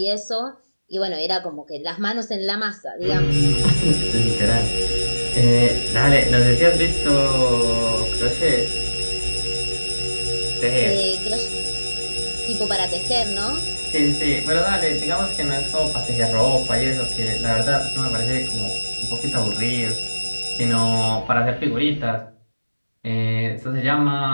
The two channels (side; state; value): both; inverted; correlation -1.00